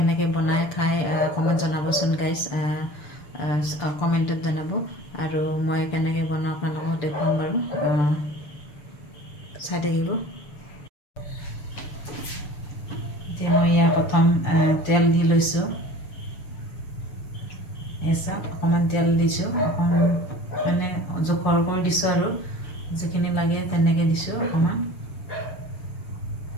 বনাই খাই অকণমান জনাবচোন গাইজ, কমেণ্টত জনাব। আৰু মই কেনেকৈ বনাওঁ আপোনালোকক দেখুৱাম বাৰু, চাই থাকিব। এতিয়া মই ইয়াৰ প্ৰথম তেল দি লৈছোঁ। চাওক, অকণমান তেল দিছোঁ, অকণমান মানে জোখৰ কৰি দিছোঁ আৰু যিখিনি লাগে তেনেকৈ দিছোঁ অকণমান।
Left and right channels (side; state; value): right; late; 6.8 ms